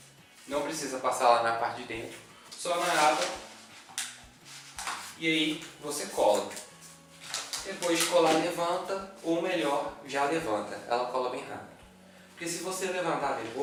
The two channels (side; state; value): both; identical; correlation 1.00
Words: não precisa passar lá na parte de dentro, só na aba, e aí você cola. Depois de colar, levanta, ou melhor, já levanta. Ela cola bem rápido. Porque se você levantar